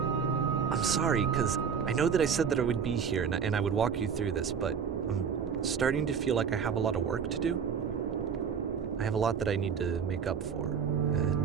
I'm sorry, because I know that I said that I would be here and I would walk you through this, but I'm starting to feel like I have a lot of work to do. I have a lot that I need to make up for,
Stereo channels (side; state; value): left; quieter; 6.8 dB